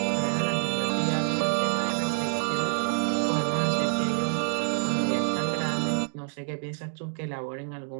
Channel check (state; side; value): silent; left; digital silence